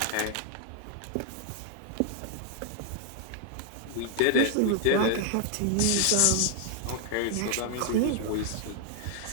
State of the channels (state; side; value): different; both; correlation 0.00